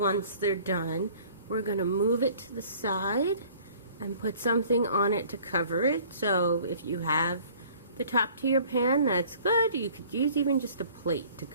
they're done, we're going to move it to the side and put something on it to cover it. So if you have the top to your pan, that's good. You could use even just a plate to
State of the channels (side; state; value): both; inverted; correlation -0.52